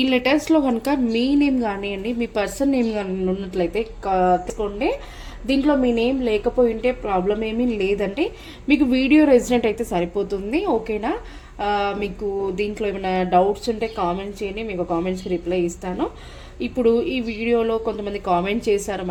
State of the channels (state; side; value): identical; both; correlation 1.00